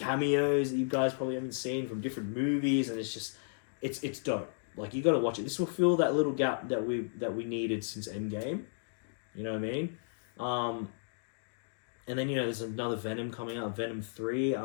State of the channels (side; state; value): right; silent; digital silence